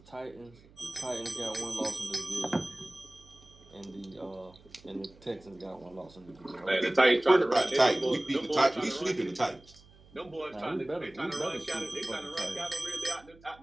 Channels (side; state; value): right; noise; hum, 25 dB below the sound